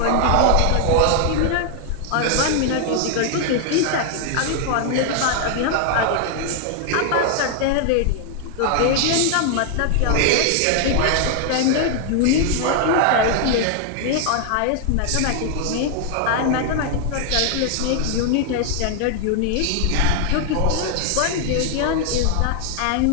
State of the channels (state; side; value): different; both; correlation 0.00